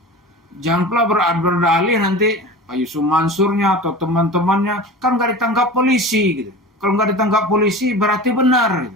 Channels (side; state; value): both; normal; correlation 0.34